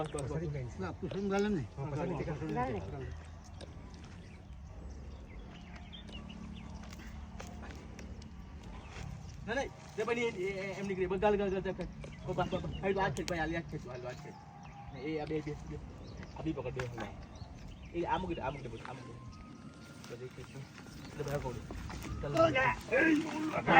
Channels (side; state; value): both; identical; correlation 1.00